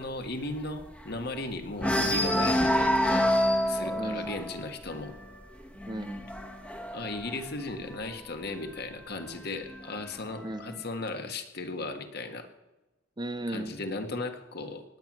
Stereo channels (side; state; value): both; normal; correlation 0.66